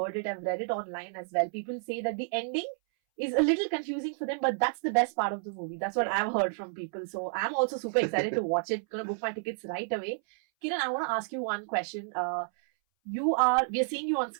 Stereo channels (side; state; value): left; silent; 57 dB below the other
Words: it. I've read it online as well. People say that the ending is a little confusing for them, but that's the best part of the movie. That's what I've heard from people. So I'm also super excited to watch it. Gonna book my tickets right away. Kiran, I want to ask you one question. We are seeing you on